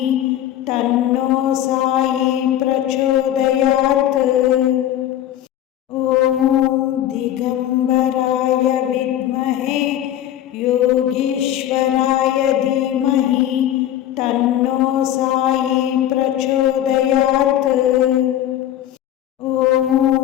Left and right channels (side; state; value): right; quieter; 11.9 dB